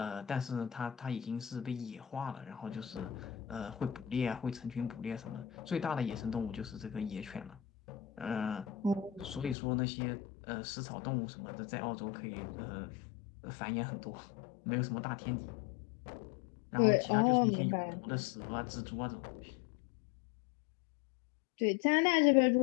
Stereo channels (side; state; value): right; drops out; at 9.6 s